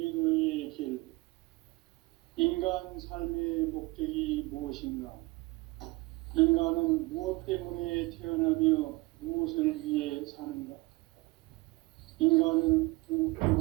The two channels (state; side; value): quieter; left; 23.3 dB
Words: 길. 인간 삶의 목적이 무엇인가? 인간은 무엇 때문에 태어나며 무엇을 위해 사는가? 인간은